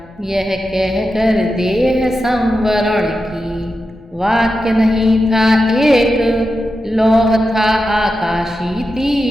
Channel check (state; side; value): normal; both; correlation 0.90